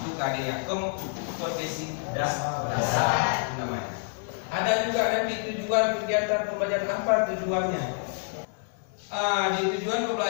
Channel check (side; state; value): right; silent; 60 dB below the other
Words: Itu KD yang kompetensi dasar namanya. Ada juga nanti tujuan kegiatan pembelajaran, apa tujuannya? Di tujuan